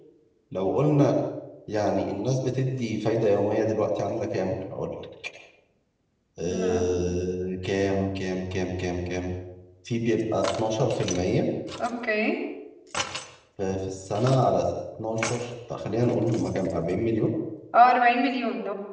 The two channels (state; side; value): identical; both; correlation 1.00